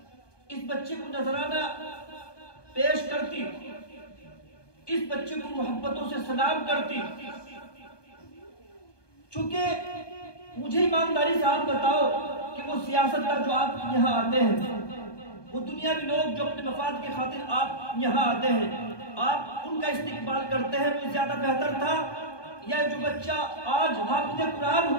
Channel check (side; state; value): right; late; 1.2 ms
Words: اس بچے کو نذرانہ پیش کرتی، اس بچے کو محبتوں سے سلام کرتی۔ چونکہ مجھے ایمانداری سے آپ بتاؤ کہ وہ سیاستدان جو آپ یہاں آتے ہیں، وہ دنیاوی لوگ جو اپنے مفاد کی خاطر آپ یہاں آتے ہیں، آپ ان کا استقبال کرتے ہیں، وہ زیادہ بہتر تھا یا جو بچہ آج حافظ قرآن